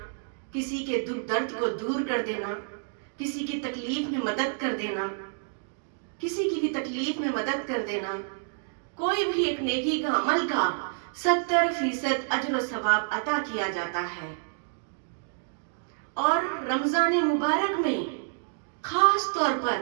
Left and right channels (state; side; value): silent; left; digital silence